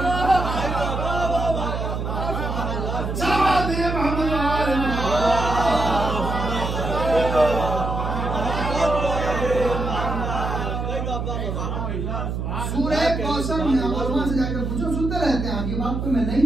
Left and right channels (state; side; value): noise; right; hum, 3 dB below the sound